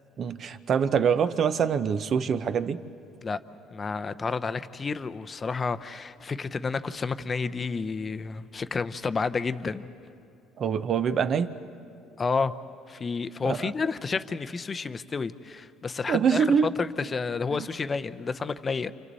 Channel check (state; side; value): normal; both; correlation 0.75